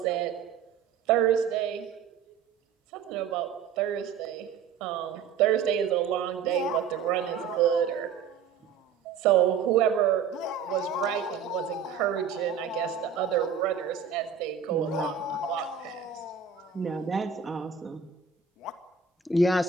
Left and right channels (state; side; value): quieter; left; 6.8 dB